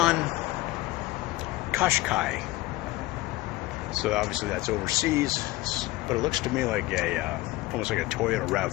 Qashqai. So obviously that's overseas, but it looks to me like almost like a Toyota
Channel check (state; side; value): quieter; right; 18.9 dB